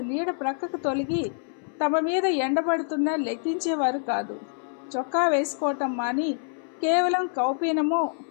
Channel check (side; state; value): right; silent; 61 dB below the other